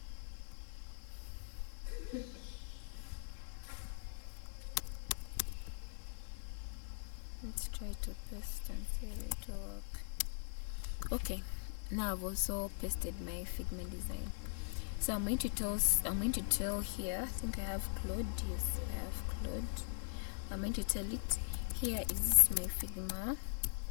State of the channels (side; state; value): right; silent; digital silence